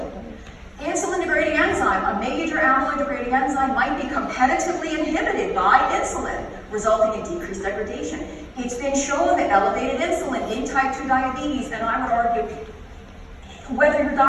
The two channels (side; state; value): both; identical; correlation 1.00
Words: Insulin-degrading enzyme, a major amyloid-degrading enzyme, might be competitively inhibited by insulin, resulting in decreased degradation. It's been shown that elevated insulin in type 2 diabetes, and I would argue, whether you're